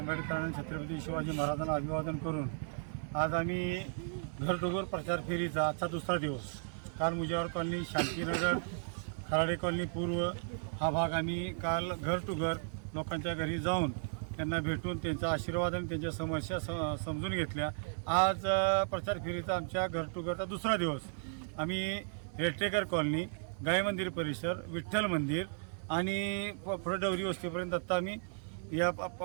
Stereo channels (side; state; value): left; silent; 54 dB below the other